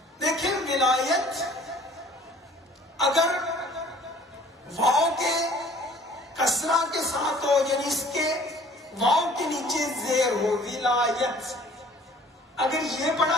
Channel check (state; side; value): normal; both; correlation 0.52